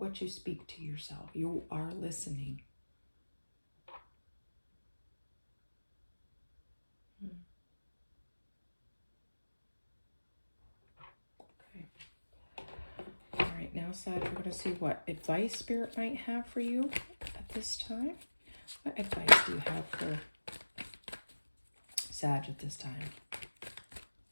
you speak to yourself. You are listening. Okay. All right, now, Sag, we're going to see what advice Spirit might have for you at this time. What advice do you have for Sag at this time?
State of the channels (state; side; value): inverted; both; correlation -1.00